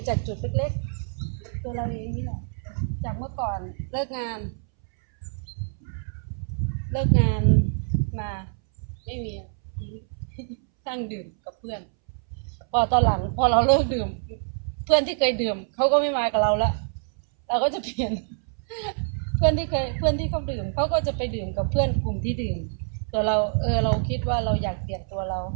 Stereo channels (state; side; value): silent; left; 61 dB below the other